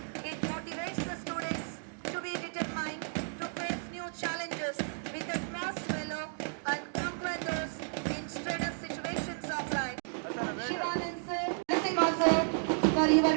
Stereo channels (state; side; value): silent; left; digital silence